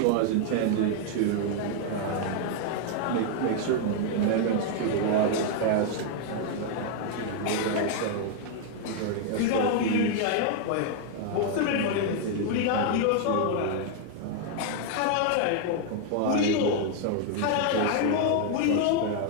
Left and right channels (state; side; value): different; both; correlation 0.00